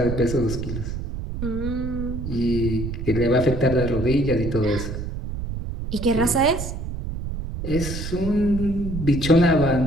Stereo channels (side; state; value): right; noise; rumble, 6 dB below the sound